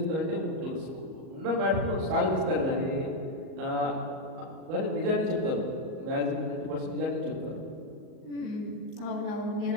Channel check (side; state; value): left; late; 38 ms